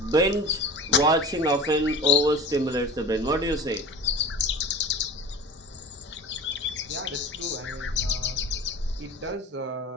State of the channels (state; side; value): normal; both; correlation 0.36